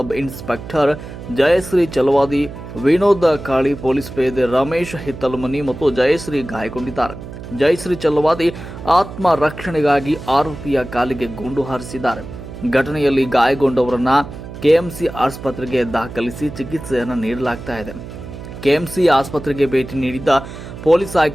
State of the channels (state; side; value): noise; right; hum, 12 dB below the sound